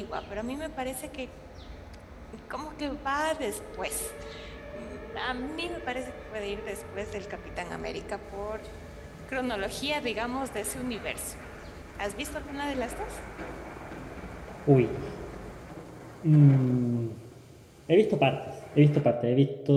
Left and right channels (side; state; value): both; identical; correlation 1.00